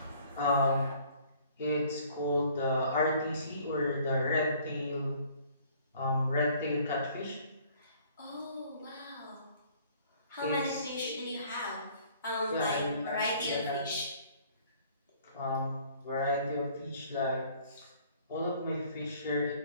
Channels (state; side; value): inverted; both; correlation -0.56